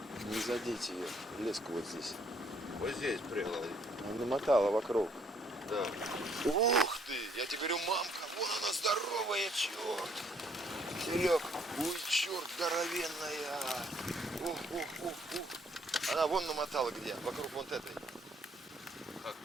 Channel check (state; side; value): normal; both; correlation 0.66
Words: не задеть ее. Леску вот здесь. Вот здесь прыгала. Она намотала вокруг. Да. Ух ты! Я тебе говорю, мамка, вон она здоровая, черт! Серег, ой, черт, здоровенная! Ух. Она вон намотала где? Вокруг вот этой.